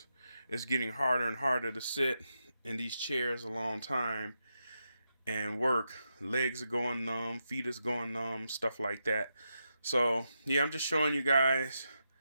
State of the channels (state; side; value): inverted; both; correlation -0.86